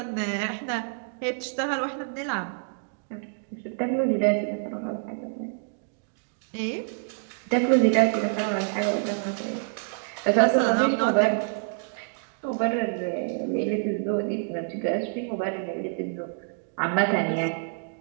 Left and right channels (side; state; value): left; silent; digital silence